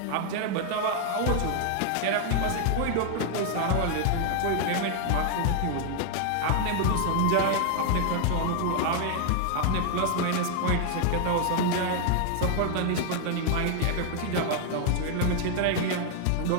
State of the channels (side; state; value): both; different; correlation 0.00